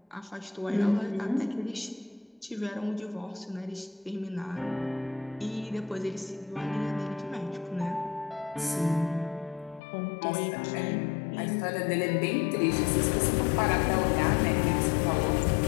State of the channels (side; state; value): right; drops out; at 9.8 s